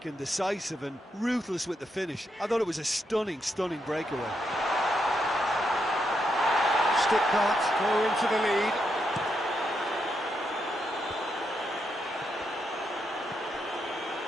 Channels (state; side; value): normal; both; correlation 0.81